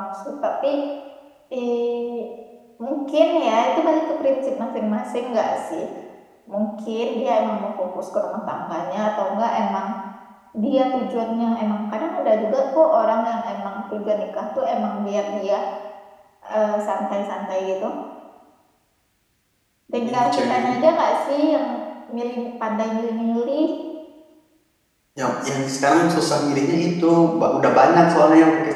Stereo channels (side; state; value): both; identical; correlation 1.00